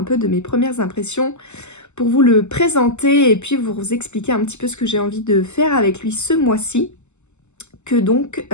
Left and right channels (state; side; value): late; right; 0.83 ms